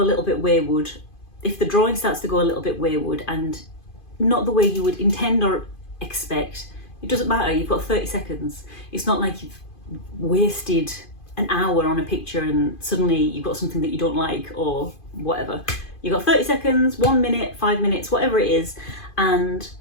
a little bit wayward, if the drawing starts to go a little bit wayward and not the way you would intend or expect, it doesn't matter, you've got 30 seconds. It's not like you've wasted an hour on a picture and suddenly you've got something that you don't like or whatever. You've got 30 seconds, 1 minute, 5 minutes, whatever it is, and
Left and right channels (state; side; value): late; right; 2.5 ms